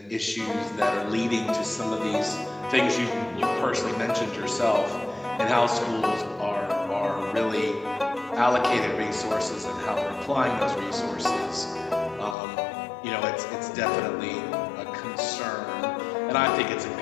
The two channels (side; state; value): right; drops out; at 12.4 s